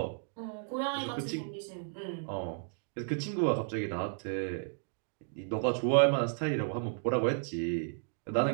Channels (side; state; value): left; silent; 55 dB below the other